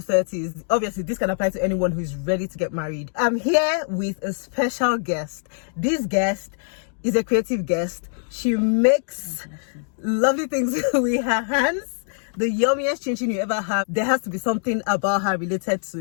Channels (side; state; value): right; silent; digital silence